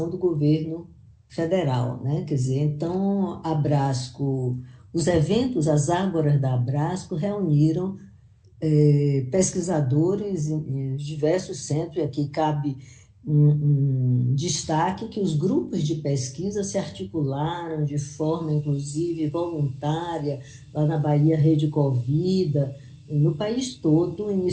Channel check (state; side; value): identical; both; correlation 1.00